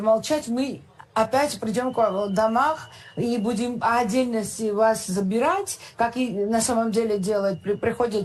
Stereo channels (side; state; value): both; identical; correlation 1.00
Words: мы опять придем к вам в домах и будем отдельно вас забирать, как и на самом деле делают.